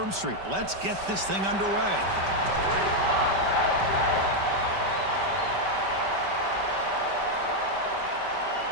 Street. Let's get this thing underway.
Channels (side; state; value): left; late; 5.2 ms